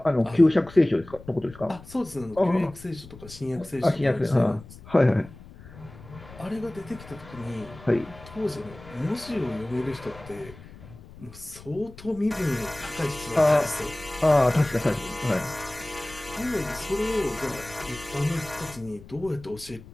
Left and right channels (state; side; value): noise; left; rumble, 18 dB below the sound